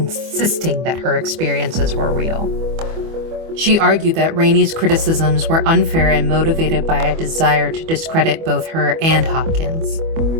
that her experiences were real. She argued that Rainey's criticisms were unfair and motivated by a desire to discredit both her and Hopkins.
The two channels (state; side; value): late; left; 25 ms